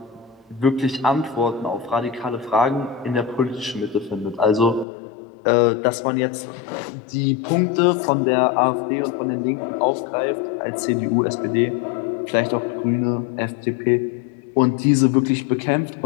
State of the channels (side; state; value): right; drops out; at 4.9 s